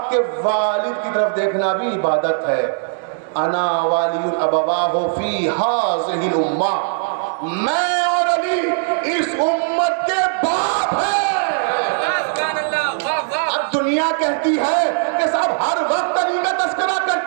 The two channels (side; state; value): left; silent; digital silence